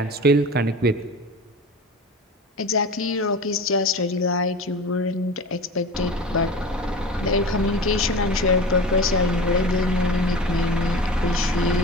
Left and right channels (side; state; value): both; normal; correlation 0.33